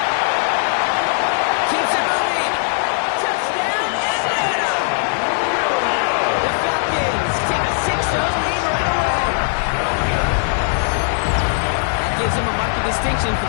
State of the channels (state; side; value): silent; right; 60 dB below the other